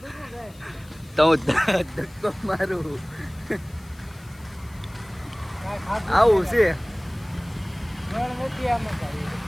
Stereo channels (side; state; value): left; noise; hiss, 26 dB below the sound